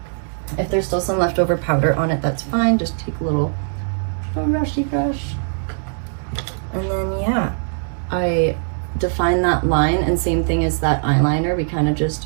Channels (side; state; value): left; silent; digital silence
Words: If there's still some leftover powder on it, that's fine. Just take a little brushy brush. And then, I define that line, and same thing as that eyeliner. We kind of